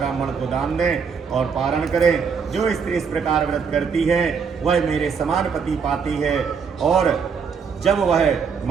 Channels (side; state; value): left; quieter; 6.1 dB